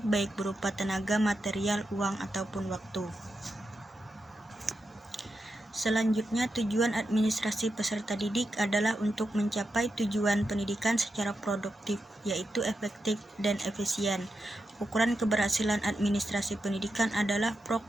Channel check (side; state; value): both; normal; correlation 0.87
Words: berupa tenaga, material, uang, ataupun waktu. Selanjutnya, tujuan administrasi peserta didik adalah untuk mencapai tujuan pendidikan secara produktif, yaitu efektif dan efisien. Ukuran keberhasilan administrasi pendidikan adalah